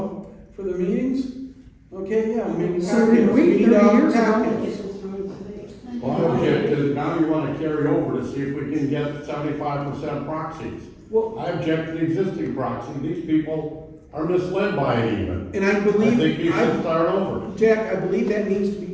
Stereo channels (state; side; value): identical; both; correlation 1.00